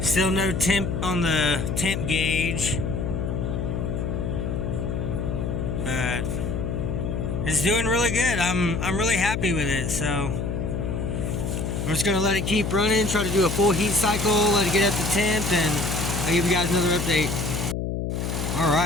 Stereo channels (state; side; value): noise; left; hum, 2 dB below the sound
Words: Still no temp on the temp gauge. But it's doing really good. I'm really happy with it. So I'm just gonna let it keep running, try to do a full heat cycle, let it get up to temp, and I'll give you guys another update. All